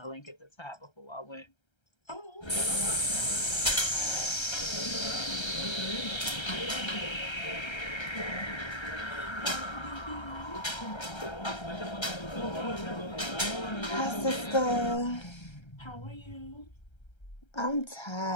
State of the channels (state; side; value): late; right; 1.3 ms